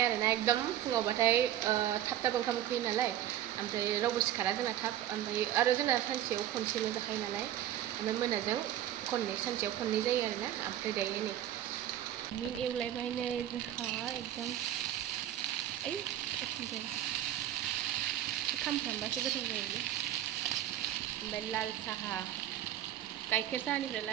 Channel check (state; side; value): quieter; left; 12.0 dB